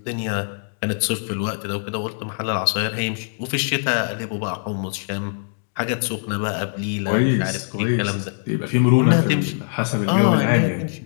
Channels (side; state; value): right; silent; digital silence